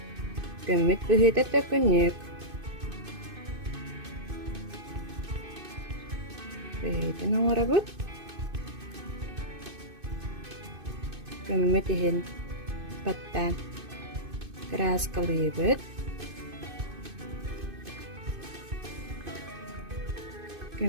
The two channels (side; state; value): left; late; 2.6 ms